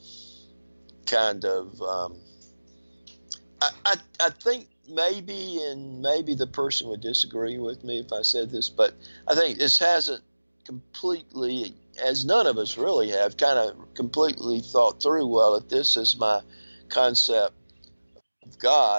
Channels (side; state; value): both; inverted; correlation -1.00